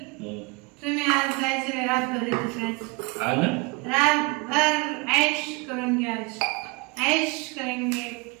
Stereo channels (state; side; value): quieter; left; 26.2 dB